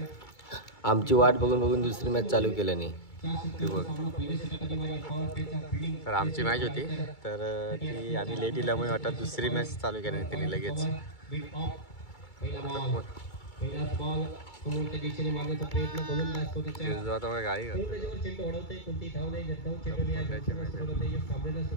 आमची वाट बघून बघून दुसरी मॅच चालू केल्याने ती बघ. तर आमची मॅच होती तर ती आम्ही लेट दिल्यामुळे वाटत दुसरी मॅच चालू केली त्यांनी लगेच.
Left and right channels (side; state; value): right; late; 2.3 ms